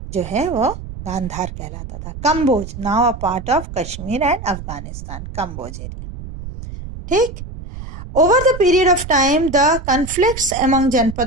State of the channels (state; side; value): noise; right; rumble, 11 dB below the sound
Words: जो है वो गांधार कहलाता था। Kamboja, now a part of Kashmir and Afghanistan, Kamboja area. ठीक। Over the period of time, the conflicts among